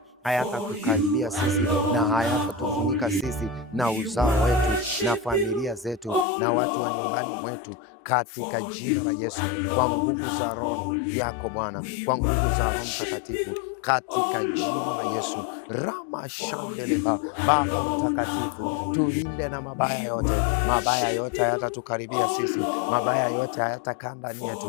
hayatatukaribia sisi na hayatatufunika sisi na uzao wetu na familia zetu na watu wa nyumbani mwetu, katika jina la Yesu. Kwa nguvu za Roho yako Bwana, kwa nguvu za Roho Mtakatifu, katika jina la Yesu. Rama shandeleba. Baba Mtakatifu, tulinde na mabaya yote. Mabaya yote hayatatukaribia sisi, mabaya yote hayatakaa ndani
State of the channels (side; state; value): right; drops out; at 6.2 s